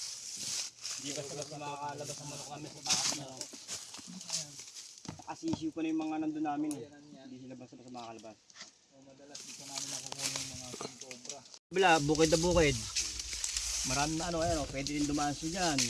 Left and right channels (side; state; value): both; identical; correlation 1.00